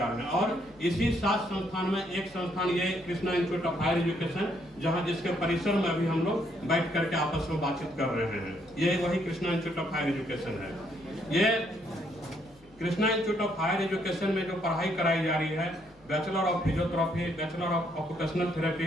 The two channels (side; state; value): both; normal; correlation 0.71